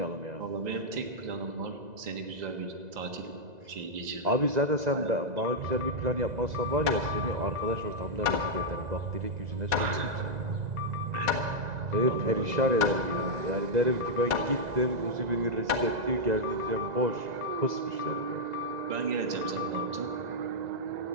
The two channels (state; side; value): late; left; 2.0 ms